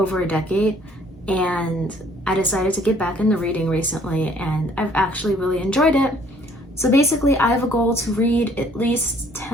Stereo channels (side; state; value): both; normal; correlation 0.60